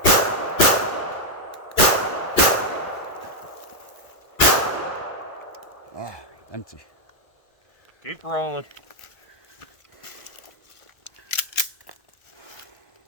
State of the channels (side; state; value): right; late; 1.2 ms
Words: Oh, empty. Keep rolling.